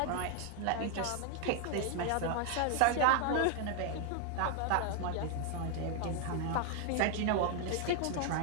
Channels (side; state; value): both; different; correlation 0.00